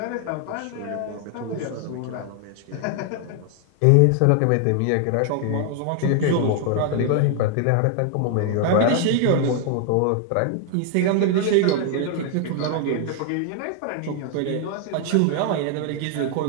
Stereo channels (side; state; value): both; different; correlation 0.00